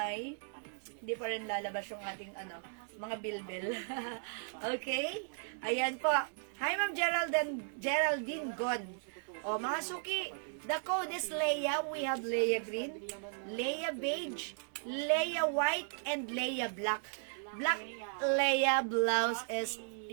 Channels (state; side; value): silent; left; digital silence